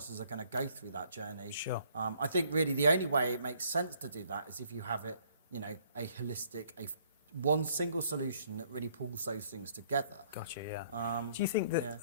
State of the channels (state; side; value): inverted; both; correlation -0.63